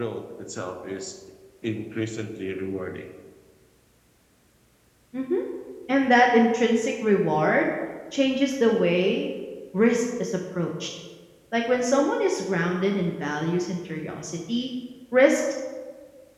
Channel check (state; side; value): identical; both; correlation 1.00